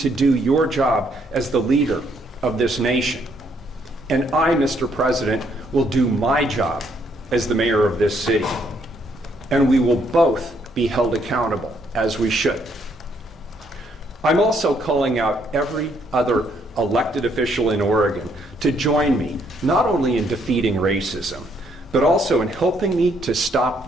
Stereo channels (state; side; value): normal; both; correlation 0.71